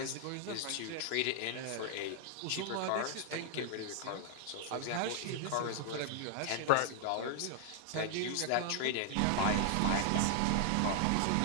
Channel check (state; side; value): different; both; correlation 0.00